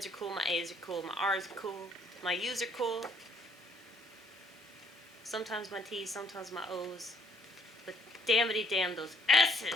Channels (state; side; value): normal; both; correlation 0.65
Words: are cool, my A's are cool, my R's are cool, my U's are cool. Sometimes my T's, sometimes my O's. But damnity damn those S's!